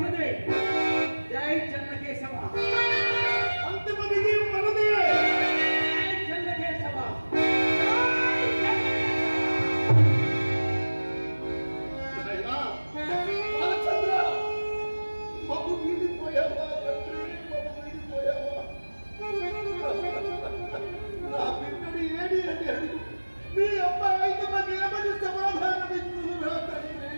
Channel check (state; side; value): inverted; both; correlation -1.00